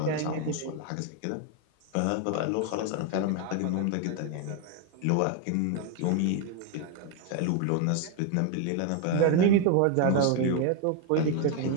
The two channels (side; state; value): both; different; correlation 0.01